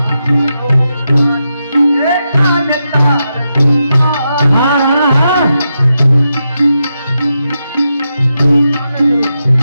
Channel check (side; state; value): both; inverted; correlation -0.86